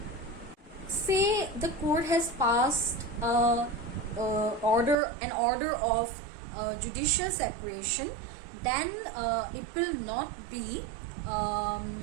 Say the court has passed an order of judicial separation, then it will not be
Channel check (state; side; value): drops out; left; at 5.0 s